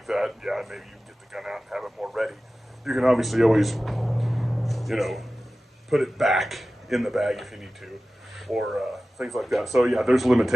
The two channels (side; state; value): both; normal; correlation 0.96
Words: that, yeah, maybe you can get the gun out and have it more ready. You can obviously always, you know, put it back in the bag if you need to, or things like that. So yeah, there's